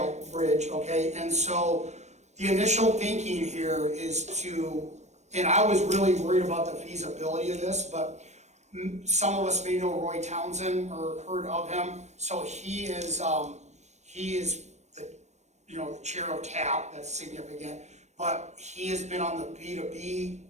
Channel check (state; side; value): late; left; 0.33 ms